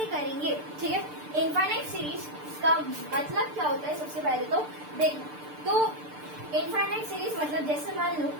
करेंगे, ठीक है। इनफाइनाइट सीरीज का मतलब क्या होता है सबसे पहले तो देखना। तो इनफाइनाइट सीरीज मतलब जैसे मान लो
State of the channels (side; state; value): left; late; 6.7 ms